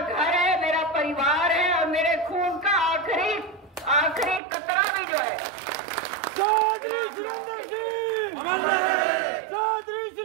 है, मेरा परिवार है, और मेरे खून का आखिरी कतरा भी जो है चौधरी सुरेंद्र सिंह, चौधरी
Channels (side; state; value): left; drops out; at 4.4 s